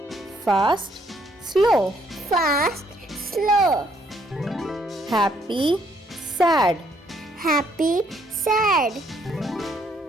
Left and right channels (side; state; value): both; normal; correlation 0.69